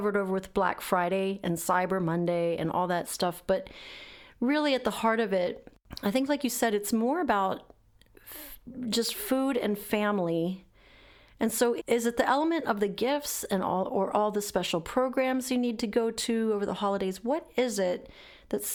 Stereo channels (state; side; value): identical; both; correlation 1.00